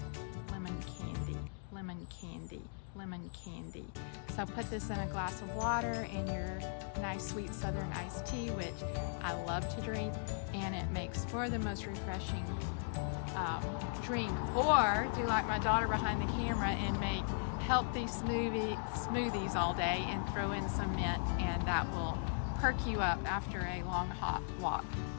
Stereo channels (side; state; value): right; silent; digital silence